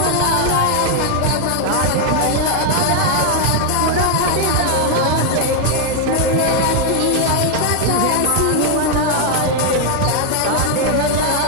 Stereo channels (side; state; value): both; different; correlation 0.00